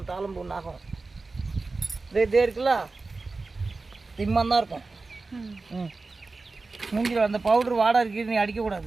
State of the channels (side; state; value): left; quieter; 3.7 dB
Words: தாளம்பூ நாகம். இதே இருக்குல்ல, திம்மாந்தான் இருக்கும். மூஞ்சில் அந்த பவுடர் வாடகை இருக்குது, நீ